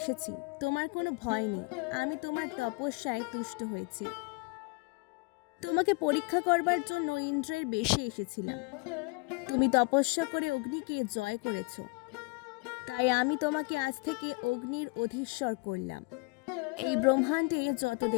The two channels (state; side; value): quieter; right; 29.9 dB